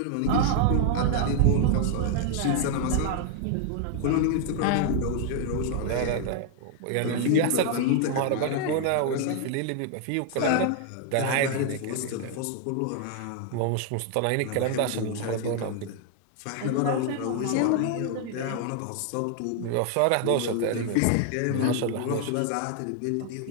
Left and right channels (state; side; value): different; both; correlation 0.00